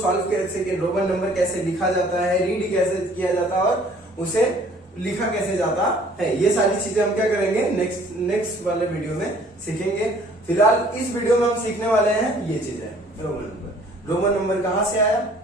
कैसे, रोमन नंबर कैसे लिखा जाता है, रीड कैसे किया जाता है और उसे लिखा कैसे जाता है। ये सारी चीजें हम क्या करेंगे नेक्स्ट वाले वीडियो में सीखेंगे। फिलहाल इस वीडियो में हम सीखने वाले हैं ये चीजें, रोमन नंबर। रोमन नंबर कहाँ से आया,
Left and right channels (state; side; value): normal; both; correlation 0.56